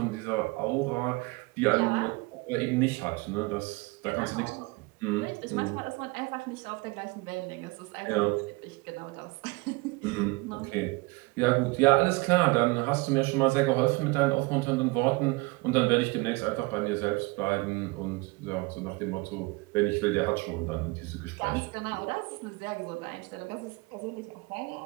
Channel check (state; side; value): quieter; left; 24.9 dB